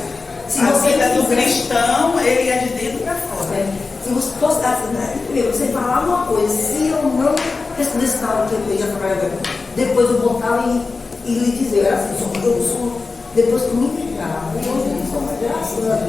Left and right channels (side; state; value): right; quieter; 4.1 dB